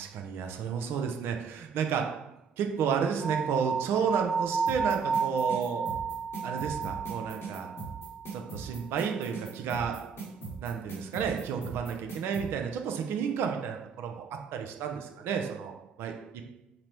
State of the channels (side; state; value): left; quieter; 6.1 dB